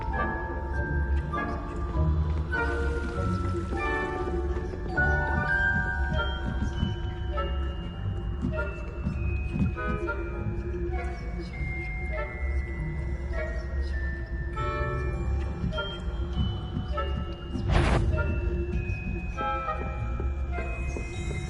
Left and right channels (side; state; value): both; identical; correlation 1.00